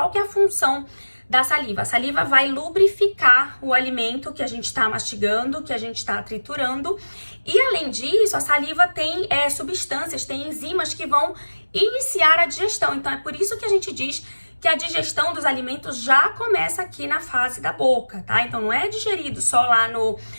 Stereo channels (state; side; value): inverted; both; correlation -1.00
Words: que é a função da saliva? A saliva vai lubrificar o alimento que a gente está mastigando, que a gente está triturando. E, além disso, a saliva tem substâncias, tem enzimas que vão iniciar a digestão. Então, é por isso que a gente diz que a digestão dos alimentos já começa aqui na fase da boca, tá? Então não é digerido só lá